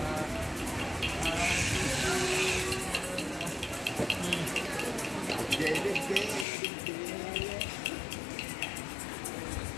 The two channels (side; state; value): right; drops out; at 6.5 s